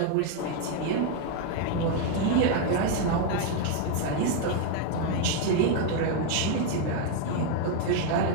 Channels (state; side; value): different; both; correlation 0.01